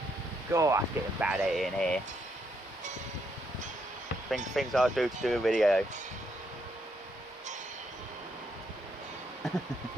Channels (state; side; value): normal; both; correlation 0.76